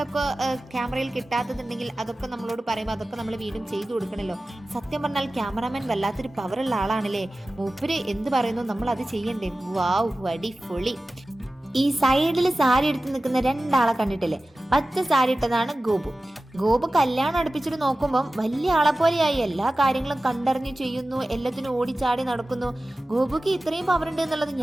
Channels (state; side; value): normal; both; correlation 0.96